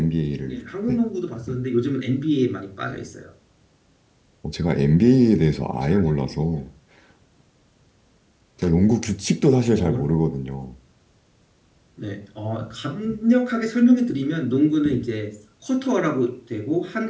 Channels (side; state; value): both; identical; correlation 1.00